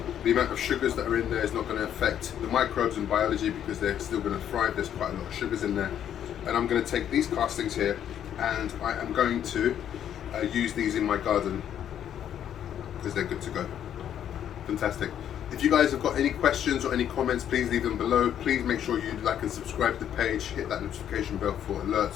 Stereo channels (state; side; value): quieter; right; 9.9 dB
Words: The amount of sugars that are in there is not going to affect the microbes and biology because they're still going to thrive. There's quite a lot of sugars in there. And I'm going to take these castings here and I am going to use these in my garden because they're good to go. Fantastic. If you guys have got any questions or any comments, please leave them below. Please make sure you like and subscribe to the page, hit that notification bell for